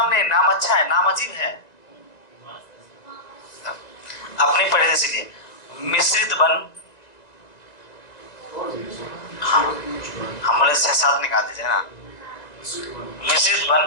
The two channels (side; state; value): right; late; 1.9 ms